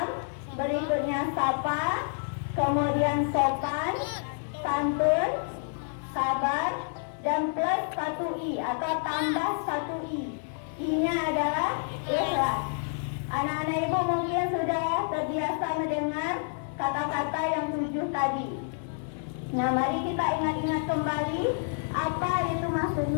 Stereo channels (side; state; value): right; silent; digital silence